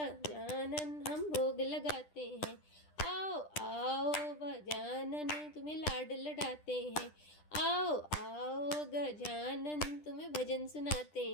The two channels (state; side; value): late; right; 10 ms